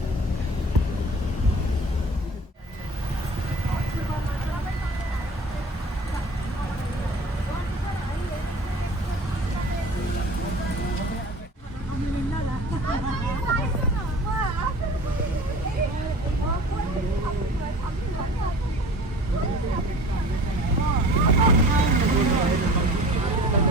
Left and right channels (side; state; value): both; normal; correlation 0.43